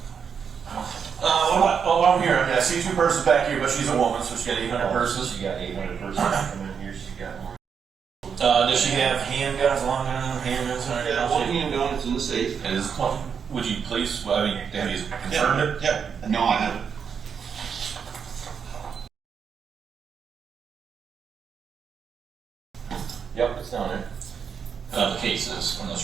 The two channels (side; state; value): left; quieter; 6.8 dB